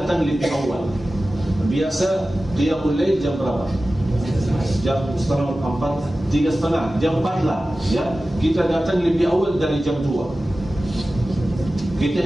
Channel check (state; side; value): normal; both; correlation 0.95